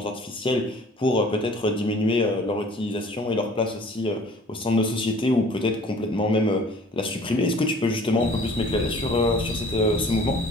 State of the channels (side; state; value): both; normal; correlation 0.50